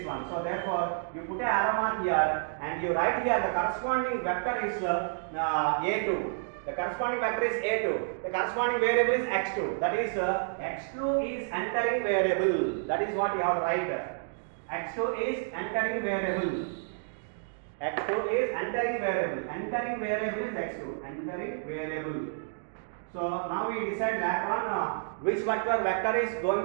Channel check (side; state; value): left; silent; digital silence